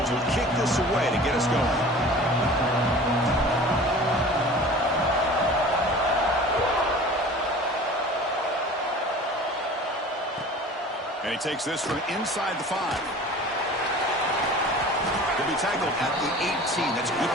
Will kick this away to get us going. And he takes this from inside the 5. He'll be tackled at the 18. That's good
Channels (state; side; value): normal; both; correlation 0.42